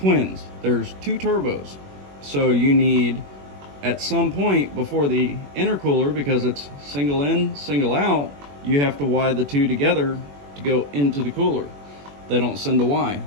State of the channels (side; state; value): left; late; 21 ms